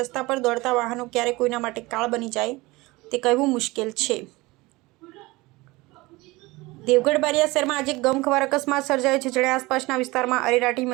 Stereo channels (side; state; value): left; quieter; 21.8 dB